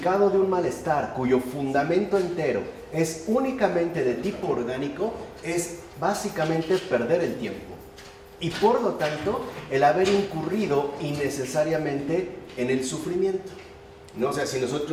de un malestar cuyo fundamento entero es únicamente de tipo orgánico es básicamente perder el tiempo y por lo tanto el haber incurrido innecesariamente en el sufrimiento, ¿no? O sea, si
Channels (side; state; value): both; identical; correlation 1.00